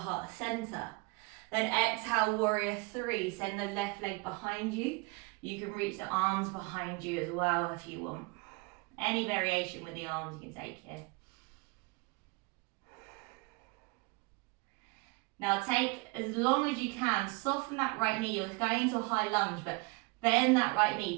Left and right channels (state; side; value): quieter; left; 28.1 dB